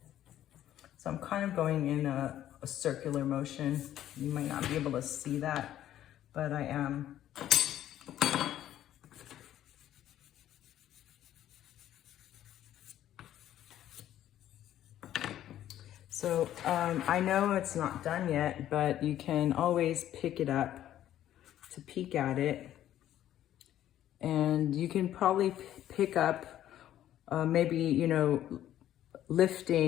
So I'm kind of going in a circular motion. You might not be able to see that, but I am. So I know it's not done yet, but you can always pick it up to peek at it. And you can probably pick up maybe,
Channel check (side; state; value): right; quieter; 12.1 dB